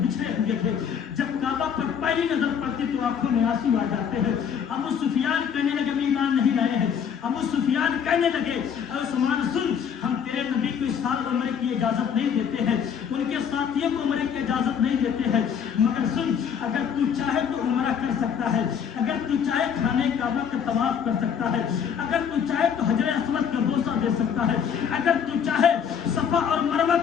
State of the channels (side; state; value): right; quieter; 7.6 dB